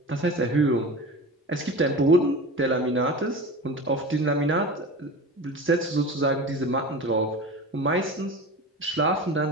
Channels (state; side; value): normal; both; correlation 0.31